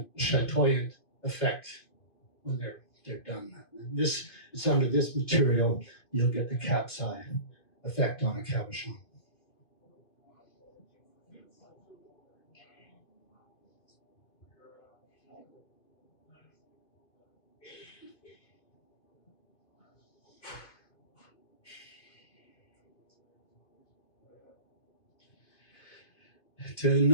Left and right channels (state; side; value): late; right; 2.5 ms